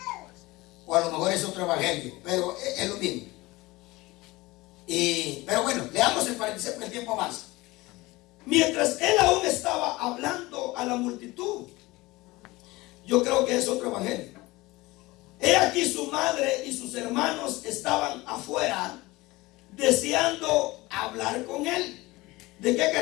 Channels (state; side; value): quieter; right; 20.8 dB